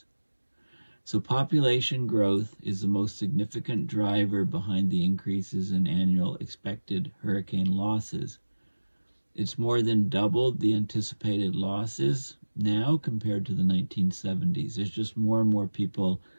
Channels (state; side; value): inverted; both; correlation -1.00